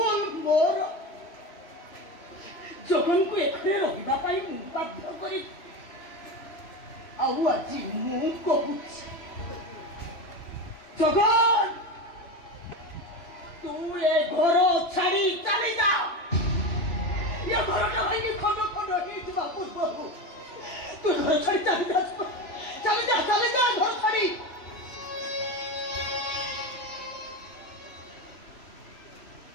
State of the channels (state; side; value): late; right; 3.0 ms